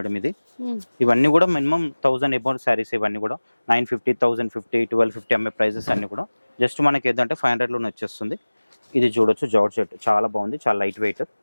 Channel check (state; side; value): inverted; both; correlation -1.00